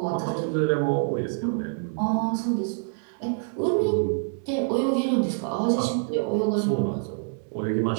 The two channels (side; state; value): left; silent; digital silence